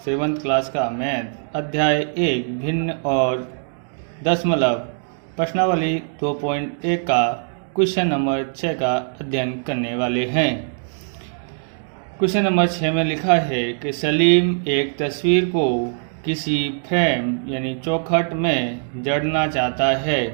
7th class का math अध्याय 1 भिन्न और दशमलव प्रश्नावली 2.1 का क्वेश्चन नंबर 6 का अध्ययन करने वाले हैं। क्वेश्चन नंबर 6 में लिखा है कि सलीम एक तस्वीर को किसी फ्रेम यानी चौखट में जड़ना चाहता है।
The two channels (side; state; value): left; silent; digital silence